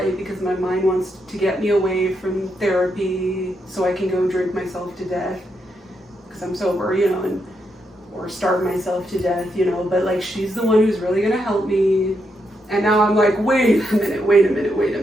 because my mind wants to get me away from therapy so I can go drink myself to death because I'm sober, you know, or starve myself to death, you know, but, like, she's the one who's really going to help me. And now I'm like, wait a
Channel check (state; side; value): normal; both; correlation 0.81